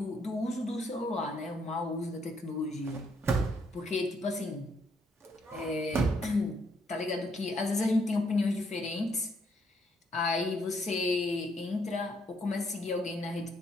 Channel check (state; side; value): normal; both; correlation 0.72